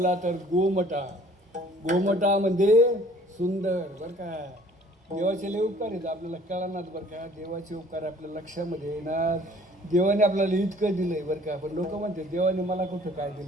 तर गोमटा. गोमटा म्हणजे सुंदर बरं का. देवाचे लय उपकार आहेत आपल्याला कळणार बरं का. देवाचे उपकार आपल्या लक्षामध्ये येणार. देवाने आपल्याला इतकं दिलंय बरं का. पण लोक म्हणते देवाने मला कुठं काय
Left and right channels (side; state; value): both; normal; correlation 0.54